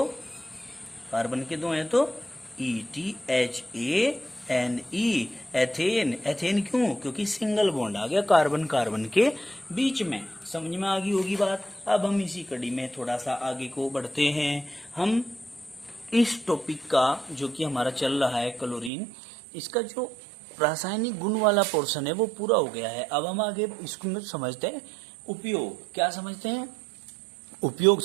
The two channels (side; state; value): left; drops out; at 18.9 s